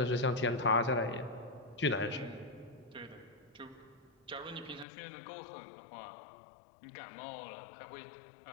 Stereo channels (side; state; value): right; drops out; at 4.9 s